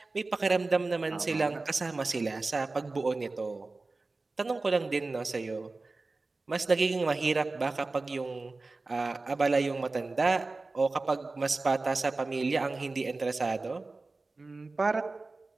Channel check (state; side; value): quieter; left; 3.5 dB